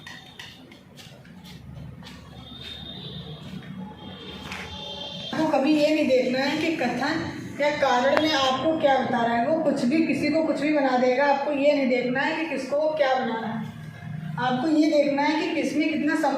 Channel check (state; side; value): identical; both; correlation 1.00